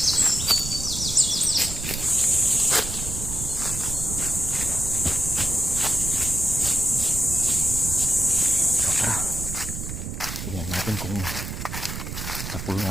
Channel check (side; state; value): right; noise; rumble, 6 dB below the sound